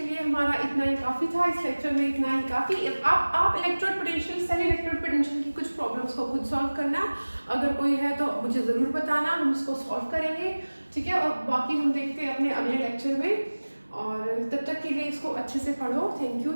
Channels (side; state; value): both; inverted; correlation -1.00